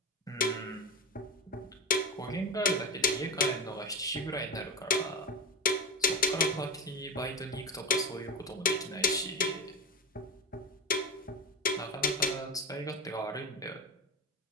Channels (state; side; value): normal; both; correlation 0.20